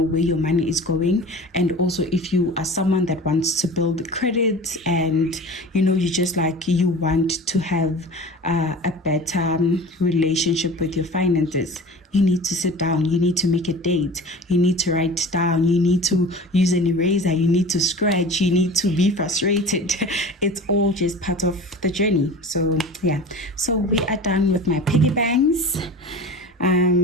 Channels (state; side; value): normal; both; correlation 0.37